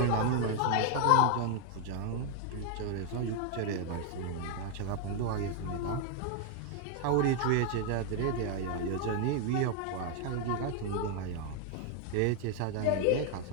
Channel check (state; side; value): different; both; correlation 0.00